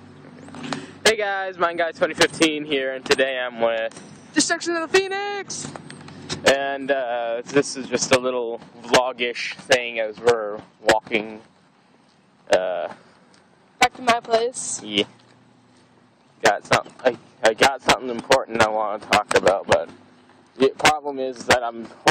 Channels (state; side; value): identical; both; correlation 1.00